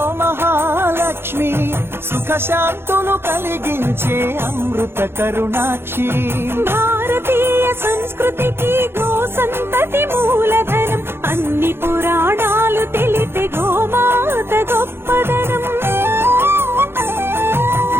సుఖ శాంతులు కలిగించే అమృత కరుణాక్షి భారతీయ సంస్కృతికి గో సంతతి మూలధనం అన్ని పురాణాలు తెలిపే గోమాత గొప్పదనం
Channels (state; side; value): late; left; 0.11 ms